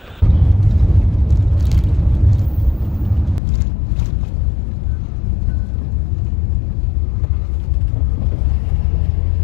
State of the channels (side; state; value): right; drops out; at 3.4 s